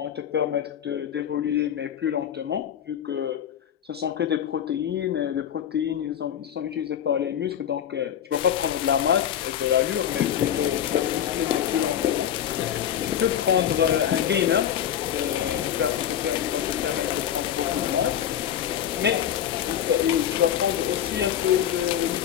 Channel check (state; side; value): quieter; right; 10.0 dB